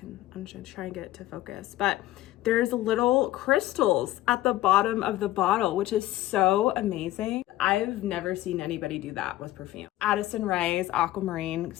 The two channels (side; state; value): right; quieter; 15.3 dB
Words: I'm just gonna try and get it to focus, but there's little crystals at the bottom of the bottle, which is so amazing. I've never seen anybody do that with perfume. Addison Rae's Aquamarine